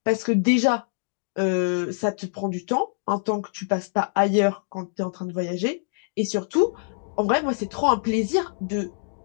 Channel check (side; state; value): right; silent; digital silence